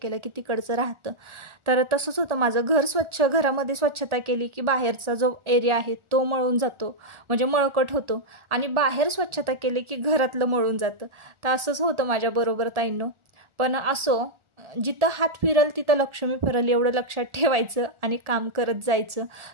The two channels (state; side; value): late; left; 1.4 ms